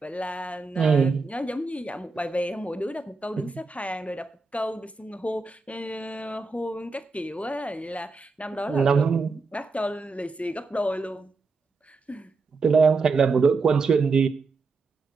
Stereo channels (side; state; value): left; quieter; 4.0 dB